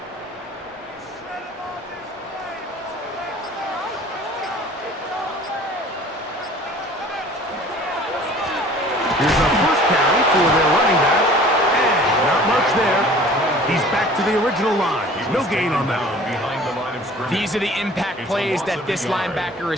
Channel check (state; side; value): normal; both; correlation 0.48